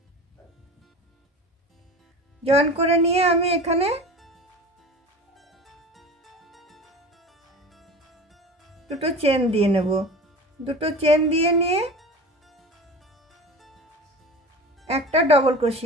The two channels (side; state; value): both; normal; correlation 0.34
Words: জয়েন করে নিয়ে আমি এখানে দুটো চেন দিয়ে নেব। দুটো চেন দিয়ে নিয়ে একটা ডবল